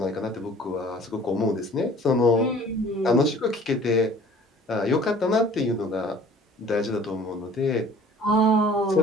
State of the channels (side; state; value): both; normal; correlation 0.50